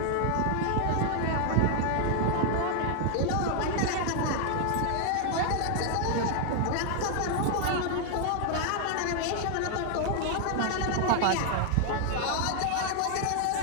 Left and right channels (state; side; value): different; both; correlation 0.00